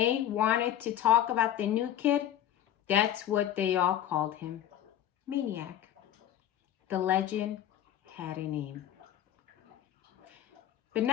wanted to talk about the new kid, that's what they all called him, Maniac. The legend had a name. But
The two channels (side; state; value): right; quieter; 11.4 dB